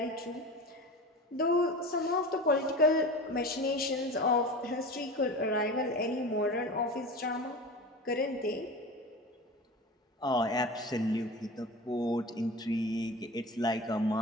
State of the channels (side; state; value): both; normal; correlation 0.32